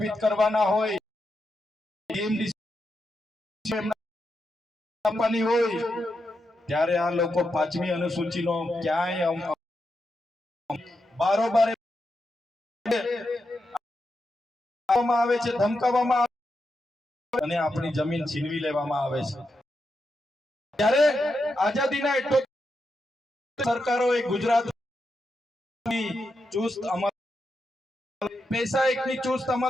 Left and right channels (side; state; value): both; normal; correlation 0.86